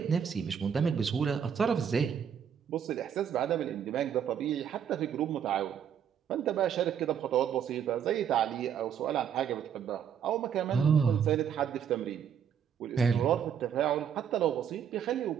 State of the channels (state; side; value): quieter; left; 8.2 dB